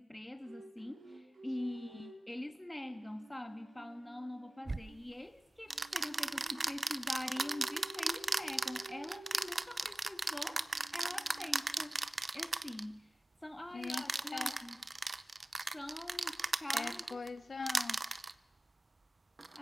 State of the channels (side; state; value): both; normal; correlation 0.97